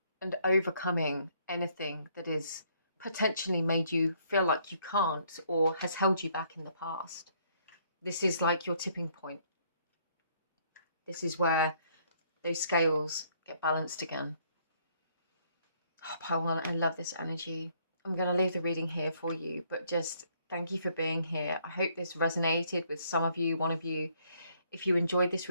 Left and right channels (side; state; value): both; inverted; correlation -0.67